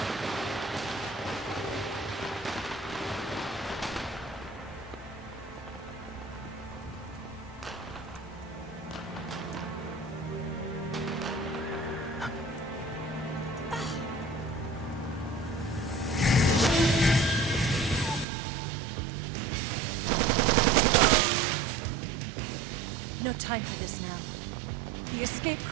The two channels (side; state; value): left; drops out; at 18.2 s